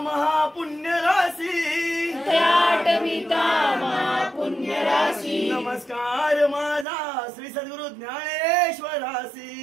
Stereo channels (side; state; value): left; drops out; at 6.9 s